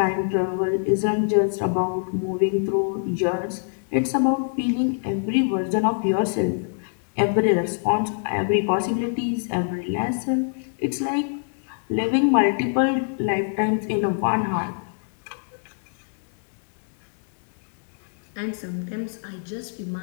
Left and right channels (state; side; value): silent; right; digital silence